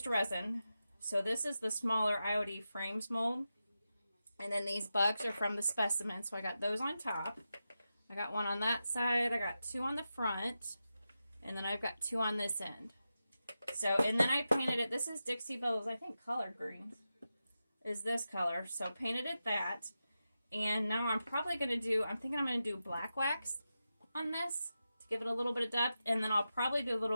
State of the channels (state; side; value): inverted; both; correlation -0.91